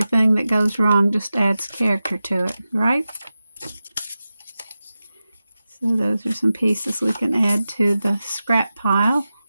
that goes wrong just adds character to it, right? So those are some pieces we can add to the scrap pile.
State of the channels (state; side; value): inverted; both; correlation -0.93